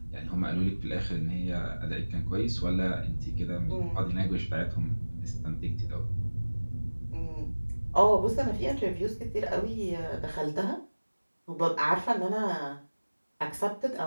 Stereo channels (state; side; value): inverted; both; correlation -1.00